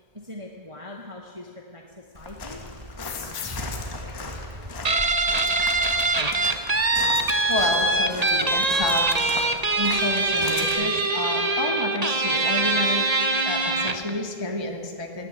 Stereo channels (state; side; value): late; left; 1.8 ms